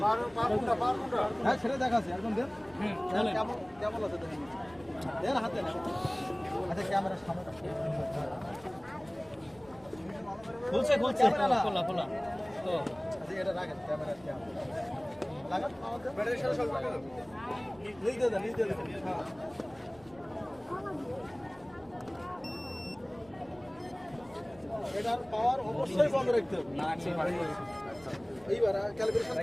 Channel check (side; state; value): right; noise; rumble, 25 dB below the sound